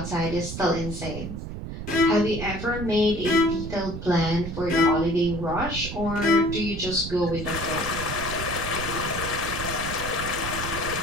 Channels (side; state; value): right; noise; rumble, 7 dB below the sound